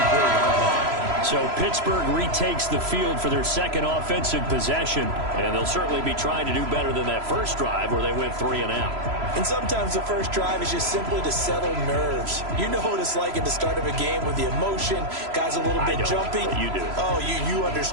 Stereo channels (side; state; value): left; late; 3.0 ms